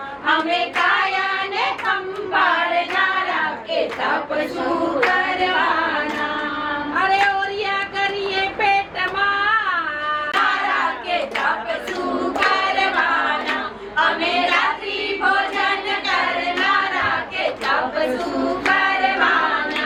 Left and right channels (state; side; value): identical; both; correlation 1.00